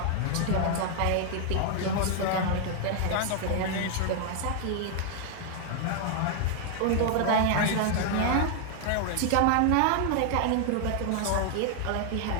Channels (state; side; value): different; both; correlation 0.00